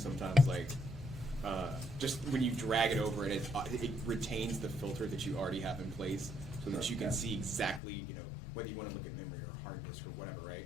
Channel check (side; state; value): right; drops out; at 7.8 s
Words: sometimes, like just when you drag it over and it retains the filter that you already have in place, so that you can see exactly, you know, whether you want to look at memory or hard disk or whatever, right?